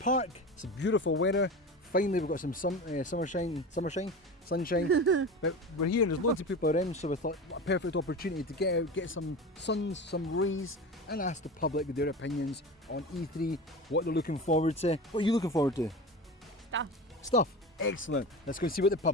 It's a beautiful weather. Finally, we've got some sunshine. But we're here and there's loads of people around, so we thought what a perfect opportunity to get out, get some sun, some rays, and ask the public their opinions on E3, what they're looking forward to. What are you looking forward to? Stuff. Excellent. Let's go and see what the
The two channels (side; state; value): both; normal; correlation 0.29